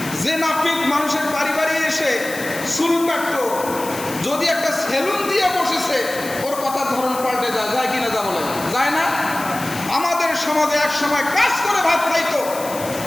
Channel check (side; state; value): left; noise; hiss, 11 dB below the sound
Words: যে নাপিত মানুষের বাড়ি বাড়ি এসে চুল কাটতো, যদি একটা সেলুন দিয়ে বসেছে, ওর কথার ধরন পাল্টে যায়। যায় কিনা? যা বলে যায় না? আমাদের সমাজে এক সময় কাজ করে ভাত খাইতো